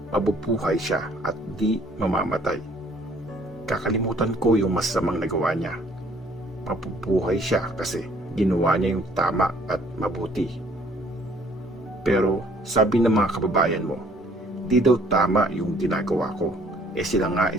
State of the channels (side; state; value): both; normal; correlation 0.59